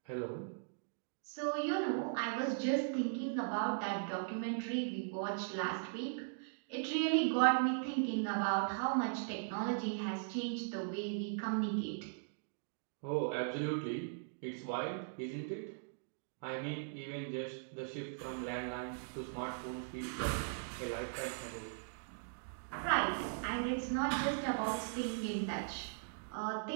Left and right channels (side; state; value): left; silent; digital silence